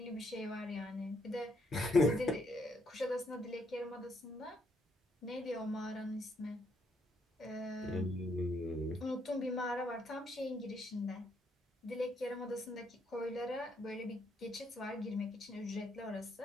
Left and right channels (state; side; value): normal; both; correlation 0.73